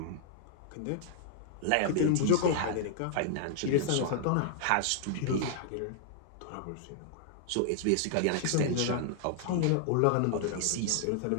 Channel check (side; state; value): both; different; correlation -0.01